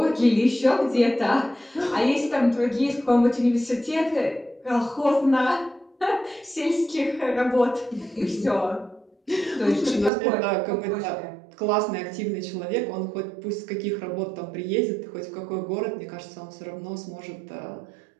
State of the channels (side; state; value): left; drops out; at 10.1 s